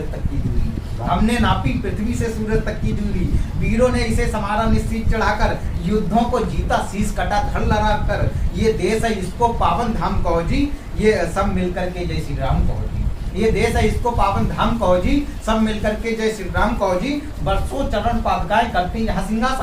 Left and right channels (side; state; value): both; identical; correlation 1.00